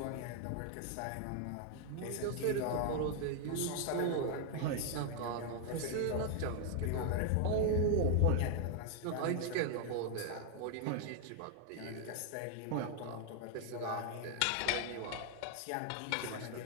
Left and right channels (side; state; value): both; different; correlation 0.00